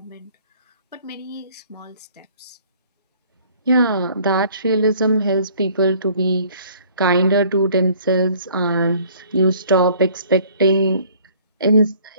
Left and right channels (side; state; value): both; inverted; correlation -0.56